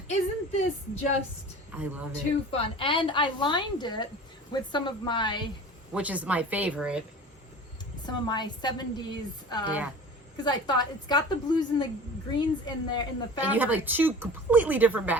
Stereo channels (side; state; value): both; normal; correlation 0.39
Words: Isn't this just I love it. Too fun. And I lined it with some of my... Which is my favorite. Some of my 70s... yeah. Because I thought it's got the blues and the greens in there in the fabric. And you have like 2 completely different